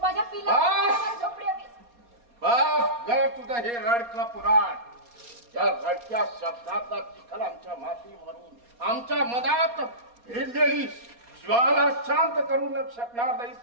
माझ्या पिल्ला झोपडी हवी. बस तुझं हे रडकं पुराण. या रडक्या शब्दाचा चिखल आमच्या माती मारून आमच्या मनात भिडलेली ज्वाला शांत करू न शकणार नाहीस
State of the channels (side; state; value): left; late; 4.2 ms